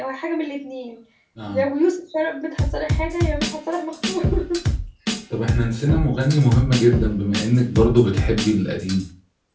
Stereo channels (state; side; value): identical; both; correlation 1.00